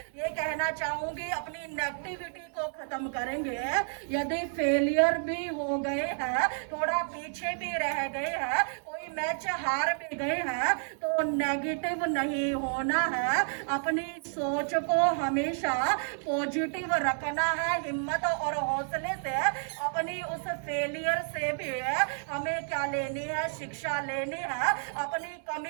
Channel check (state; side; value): silent; left; 58 dB below the other